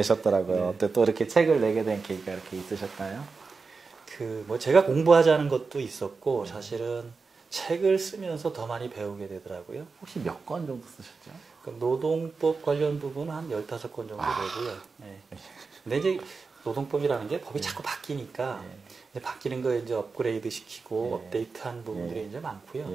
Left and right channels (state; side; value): quieter; left; 4.5 dB